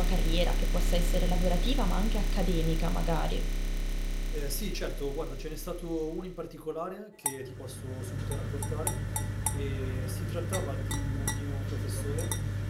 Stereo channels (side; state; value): both; identical; correlation 1.00